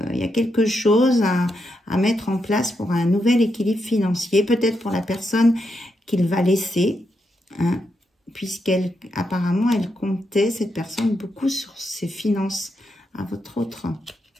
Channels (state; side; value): normal; both; correlation 0.83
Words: y a quelque chose à mettre en place pour un nouvel équilibre financier. Peut-être pour la personne qu'il va laisser. Hein, puisqu'elle, apparemment, elle comptait, cette personne, beaucoup sur ses finances à votre autre.